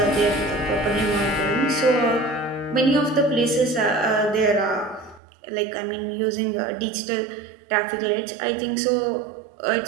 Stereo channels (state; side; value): drops out; left; at 5.2 s